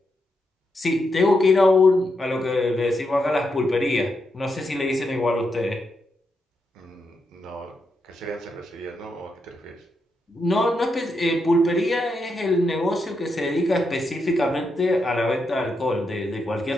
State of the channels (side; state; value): both; normal; correlation 0.83